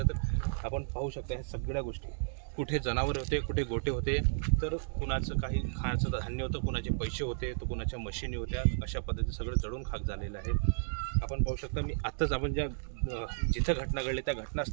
तर आपण पाहू शकता ह्या सगळ्या गोष्टी, कुठे जनावर होते, कुठे गोटे होते, तर कुणाचं काही खाण्याचं धान्य होतं, कुणाचे पैसे होते, तर कुणाच्या मशिनी होत्या. अशा पद्धतीने सगळं जळून खाक झालेलं आहे. आपण पाहू शकता, मी आत्ताच आपण जिथं घटना घडली त्या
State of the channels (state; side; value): silent; left; digital silence